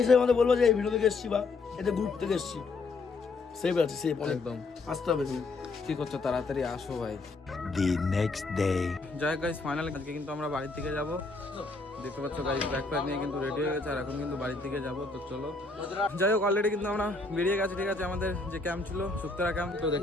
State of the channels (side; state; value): right; quieter; 3.6 dB